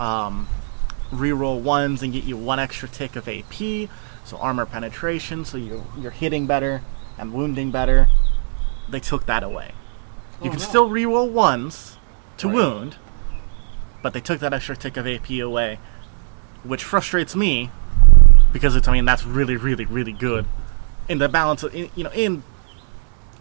reroll 1s and get you 1 extra tick of AP, so armor penetration, so you're hitting better and wounding better. They took that away. You can still reroll 1s to Right. wound, but they took that extra tick of AP away, which frustrates me because it's, I mean, that's really, really, really good in the balance of, in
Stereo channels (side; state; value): left; silent; digital silence